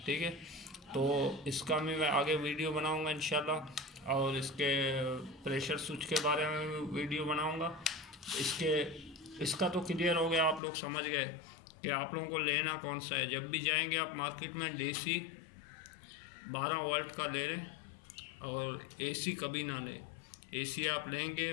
ठीक है, तो इसका मैं आगे वीडियो बनाऊंगा इंशाल्लाह, और इसके प्रेशर स्विच के बारे में भी वीडियो बनाऊंगा। इसका तो क्लियर हो गया, आप लोग समझ गए कि आप लोगों को लेना कौन सा है। जब भी जाएंगे आप मार्केट में DC 12 वोल्ट का ले लें, और AC कभी ना लें। AC आप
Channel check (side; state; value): right; drops out; at 10.6 s